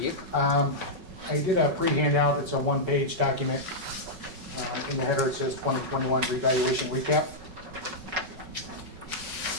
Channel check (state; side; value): late; left; 5.3 ms